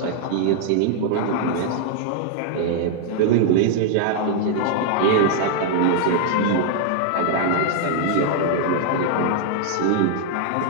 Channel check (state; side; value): different; both; correlation 0.00